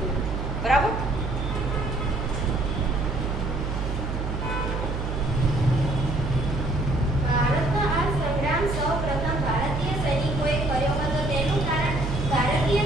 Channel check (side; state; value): right; noise; hum, 3 dB below the sound